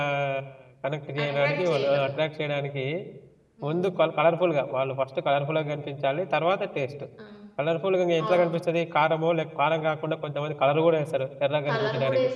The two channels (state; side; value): identical; both; correlation 1.00